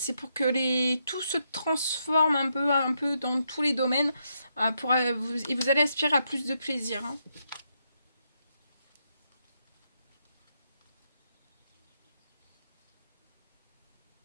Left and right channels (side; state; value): both; inverted; correlation -0.80